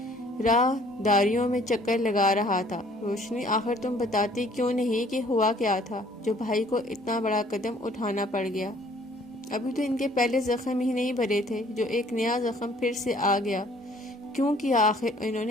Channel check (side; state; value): both; normal; correlation 0.57